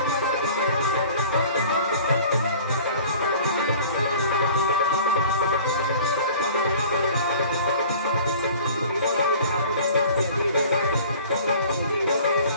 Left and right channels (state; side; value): inverted; both; correlation -0.46